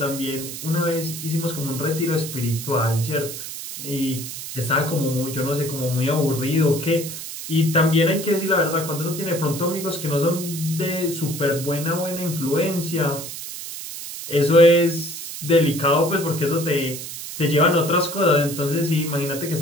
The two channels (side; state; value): right; noise; hiss, 9 dB below the sound